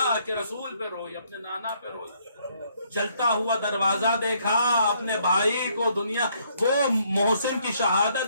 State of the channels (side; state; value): both; inverted; correlation -0.68